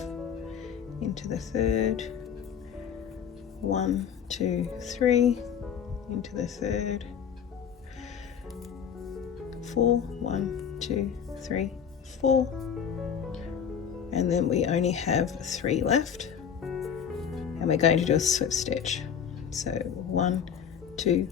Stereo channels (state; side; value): quieter; right; 7.8 dB